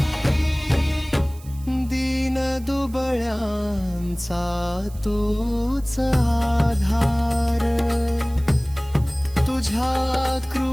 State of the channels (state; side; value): noise; right; hiss, 23 dB below the sound